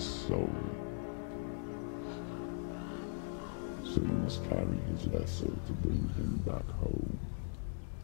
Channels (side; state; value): right; silent; digital silence